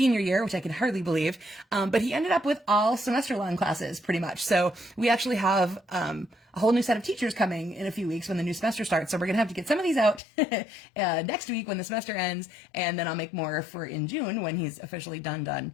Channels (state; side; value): drops out; right; at 10.2 s